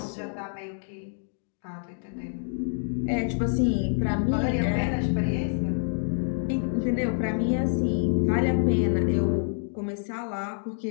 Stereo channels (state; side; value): silent; right; 60 dB below the other